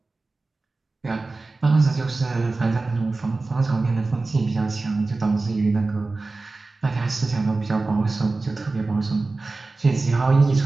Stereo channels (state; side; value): quieter; left; 3.5 dB